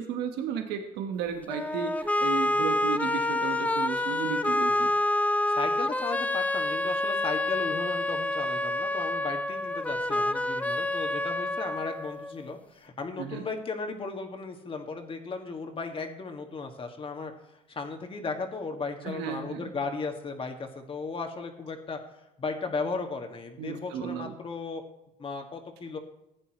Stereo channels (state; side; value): normal; both; correlation 0.70